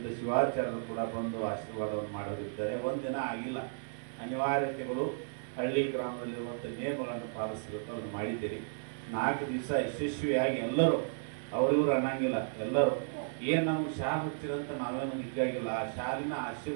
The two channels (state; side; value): silent; left; digital silence